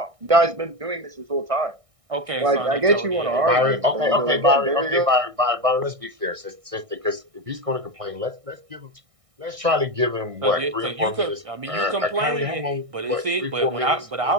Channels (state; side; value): late; left; 1.6 ms